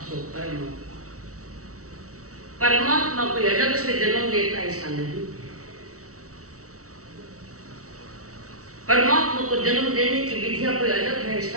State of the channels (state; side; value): late; left; 0.65 ms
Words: सो कर्म। परमात्मा कोई अलग से जन्म लेता ऐसा नहीं। परमात्मा को जन्म देने की विधिया कोई अलग है ऐसा